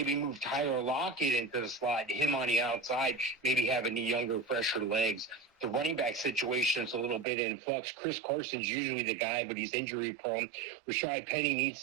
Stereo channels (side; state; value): left; drops out; at 7.2 s